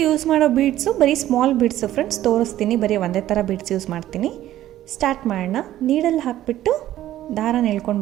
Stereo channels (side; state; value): left; quieter; 13.5 dB